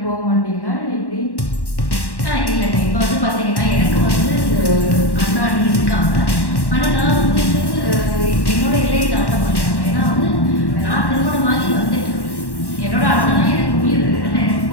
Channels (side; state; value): right; late; 1.1 ms